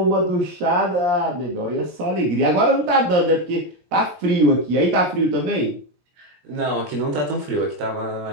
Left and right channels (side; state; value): left; late; 17 ms